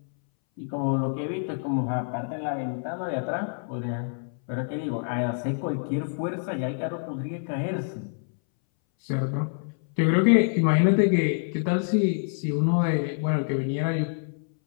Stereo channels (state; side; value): silent; right; 60 dB below the other